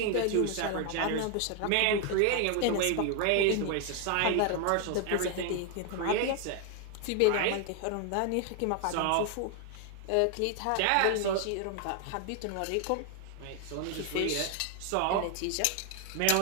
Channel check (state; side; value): different; both; correlation 0.00